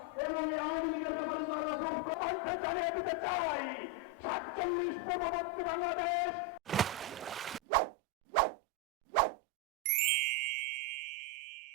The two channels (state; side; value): drops out; left; at 7.6 s